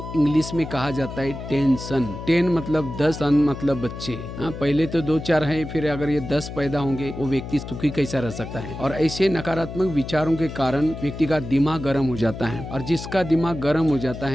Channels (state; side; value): noise; left; hum, 10 dB below the sound